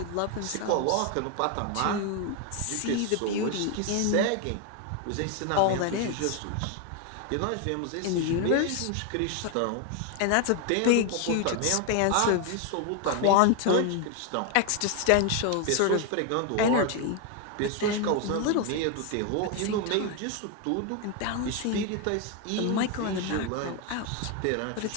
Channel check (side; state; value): both; different; correlation 0.01